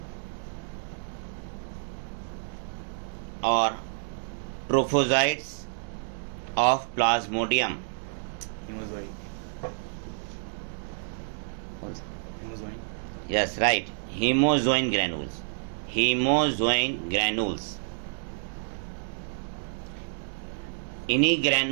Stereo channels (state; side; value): silent; left; digital silence